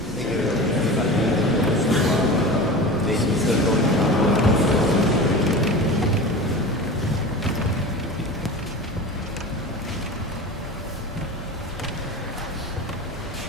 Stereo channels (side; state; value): both; normal; correlation 0.32